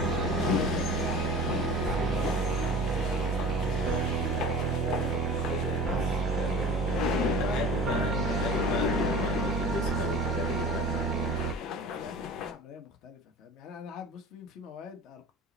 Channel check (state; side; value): normal; both; correlation 0.38